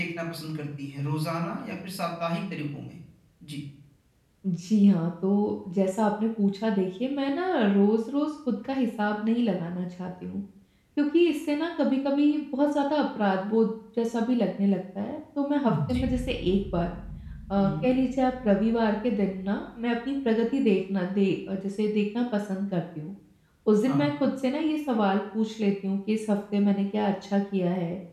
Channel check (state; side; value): identical; both; correlation 1.00